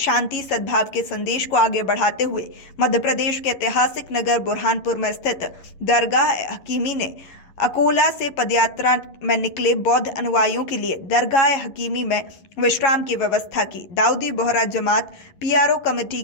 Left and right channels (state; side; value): late; right; 11 ms